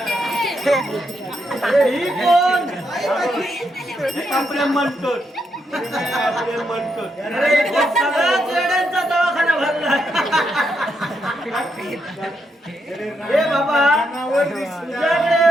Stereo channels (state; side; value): normal; both; correlation 0.80